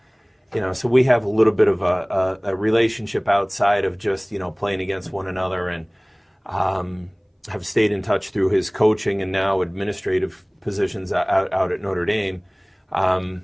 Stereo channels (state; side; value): identical; both; correlation 1.00